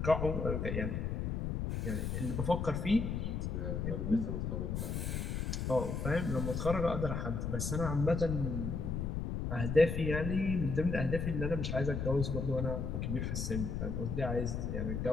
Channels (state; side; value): noise; left; rumble, 1 dB below the sound